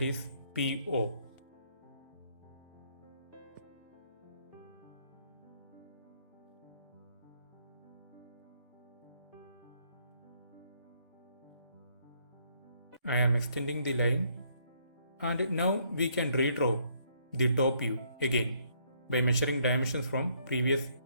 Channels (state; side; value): inverted; both; correlation -0.68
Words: is PO. I am extending the line and now we can redraw the top view again by measuring dimensions from previous